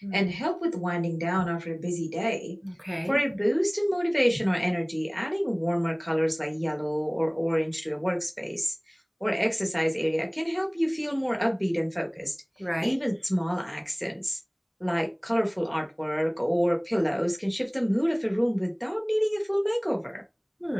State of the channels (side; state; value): both; identical; correlation 1.00